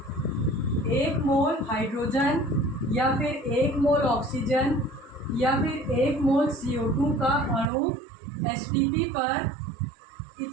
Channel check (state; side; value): drops out; left; at 7.7 s